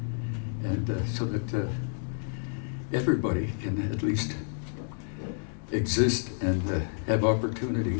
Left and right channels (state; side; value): silent; right; digital silence